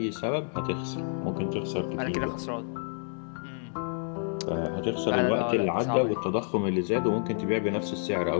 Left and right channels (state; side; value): silent; right; 59 dB below the other